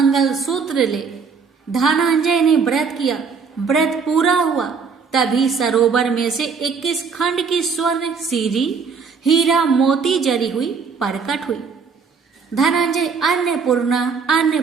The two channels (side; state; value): left; quieter; 5.5 dB